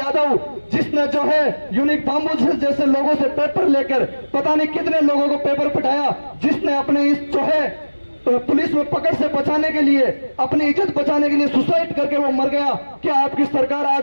जिसने जो है यूनिक धाम्बू जैसे लोगों से पेपर लेकर पता नहीं कितने लोगों को पेपर पटाया, जिसने अपने इस जो है पुलिस में पकड़ से बचाने के लिए, अपनी इज्जत बचाने के लिए सुसाइड करके वो मर गया। क्या आपकी सरकार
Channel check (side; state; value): both; inverted; correlation -1.00